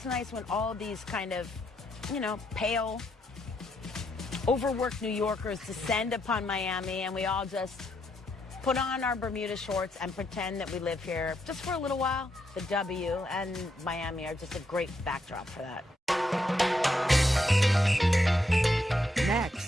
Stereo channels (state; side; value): normal; both; correlation 0.78